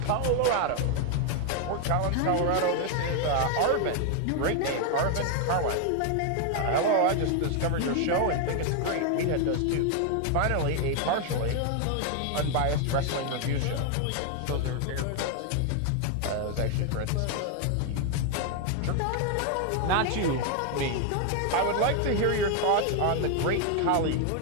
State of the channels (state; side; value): different; both; correlation 0.00